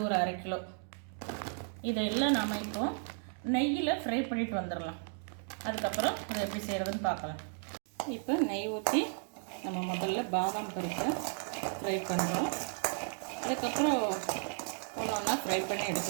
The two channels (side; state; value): left; silent; 55 dB below the other